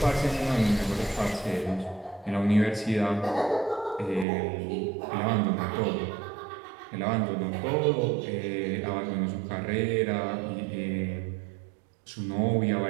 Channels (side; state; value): left; drops out; at 4.2 s